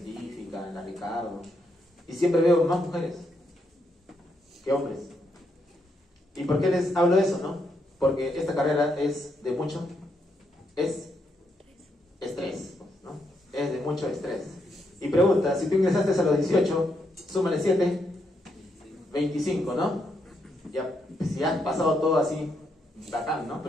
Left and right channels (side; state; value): both; normal; correlation 0.79